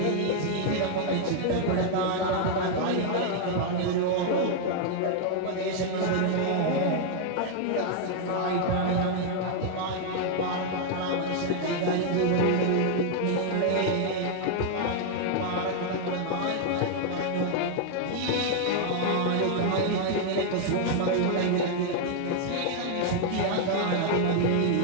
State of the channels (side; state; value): both; different; correlation 0.00